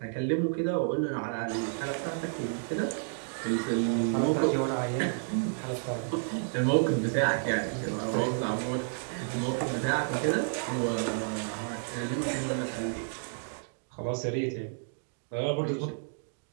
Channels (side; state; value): left; silent; digital silence